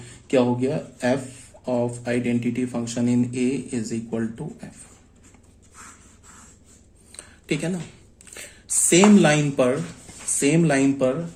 क्या हो गया, F of identity function in A is equal to F, ठीक है ना। सेम लाइन पर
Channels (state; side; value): identical; both; correlation 1.00